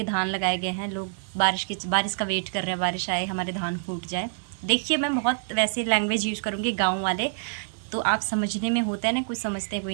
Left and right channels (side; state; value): left; silent; digital silence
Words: धान लगाए गए हैं। लोग बारिश का वेट कर रहे हैं, बारिश आए, हमारे धान फूट जाए। देखिए मैं बहुत वैसे लैंग्वेज यूज़ करूँगी गाँव वाले, तो आप समझने में होता है ना, कुछ समझते हैं कोई